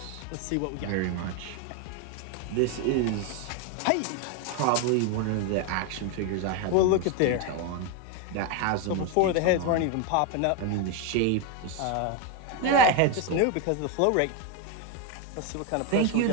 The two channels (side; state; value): both; different; correlation 0.02